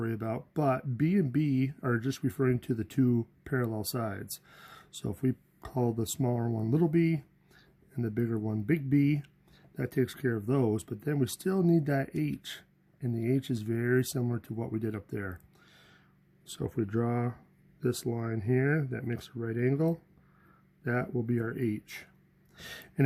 about, but B and B are just referring to the 2 parallel sides. So if we call the smaller one little b and the bigger one big B, that takes care of those, but then we still need that H, and the H is very similar to what we did up there. So if we draw this line here that makes a right angle, that will be our H. And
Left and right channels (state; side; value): identical; both; correlation 1.00